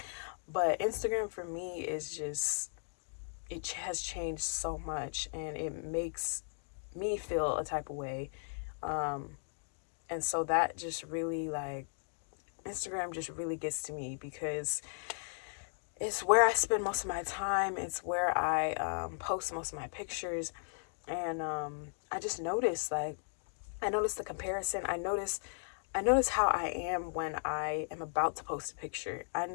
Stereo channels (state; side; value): silent; right; digital silence